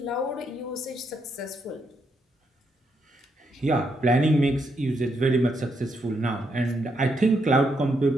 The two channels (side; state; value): both; normal; correlation 0.78